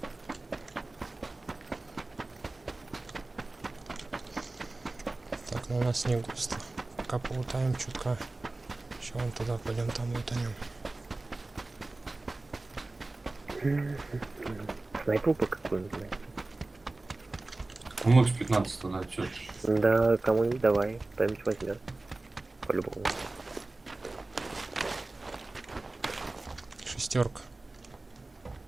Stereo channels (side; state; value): left; quieter; 3.1 dB